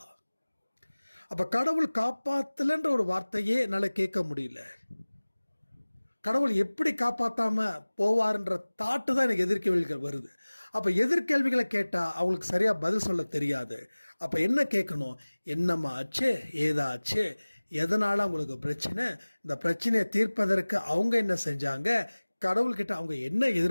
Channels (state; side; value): inverted; both; correlation -1.00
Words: அப்ப கடவுள் காப்பாத்தலன்ற ஒரு வார்த்தையே என்னால கேட்க முடியல. கடவுள் எப்படி காப்பாத்தாம போவார்ன்ற தாட்டு தான் எனக்கு எதிர்கேள்விகள் வருது. அப்ப எதிர்கேள்விகளை கேட்டா அவங்களுக்கு சரியா பதில் சொல்ல தெரியாது. அப்ப என்ன கேட்கணும்? என்னம்மா ஆச்சு, ஏதாச்சு, எதனால அவங்களுக்கு பிரச்சனை, இந்த பிரச்சனையை தீர்ப்பதற்கு அவங்க என்ன செஞ்சாங்க, கடவுள்கிட்ட அவங்க என்ன